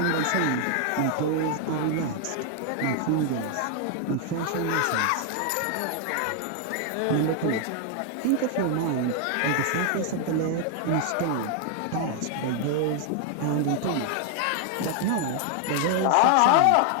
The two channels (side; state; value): both; different; correlation 0.00